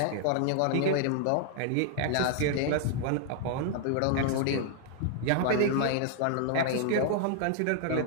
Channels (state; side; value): different; both; correlation 0.00